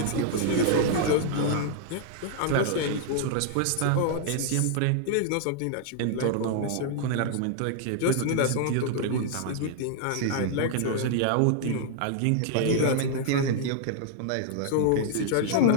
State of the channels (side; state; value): both; different; correlation -0.01